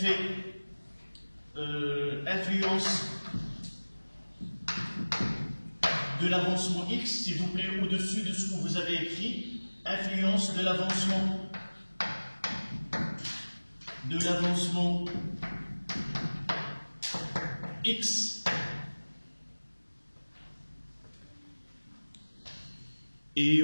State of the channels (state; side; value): inverted; both; correlation -1.00